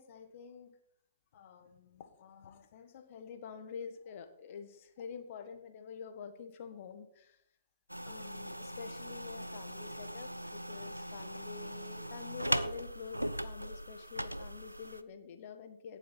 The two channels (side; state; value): both; inverted; correlation -0.89